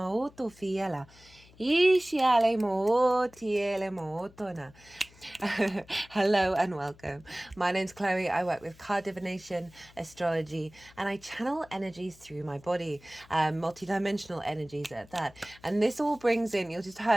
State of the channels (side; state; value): left; noise; hum, 25 dB below the sound